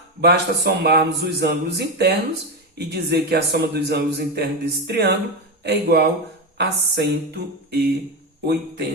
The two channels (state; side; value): normal; both; correlation 0.14